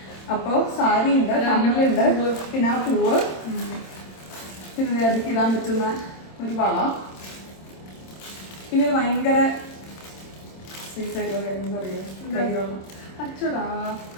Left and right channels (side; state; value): right; late; 26 ms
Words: അപ്പൊ സാരി ഉണ്ട്, കമ്മലുണ്ട്, പിന്നെ ആ പൂവ്, പിന്നെ അതിക്ക് ഇടാൻ പറ്റുന്ന ഒരു വള, പിന്നെ ഒരു ഭയങ്കര സ്വീറ്റ് ആയിട്ടുള്ള എന്താ പറയുക, അച്ചടാ